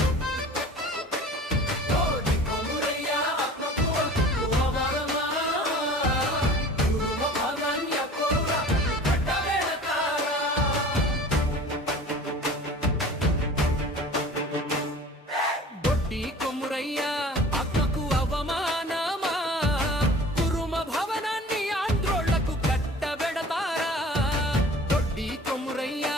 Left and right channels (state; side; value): normal; both; correlation 0.43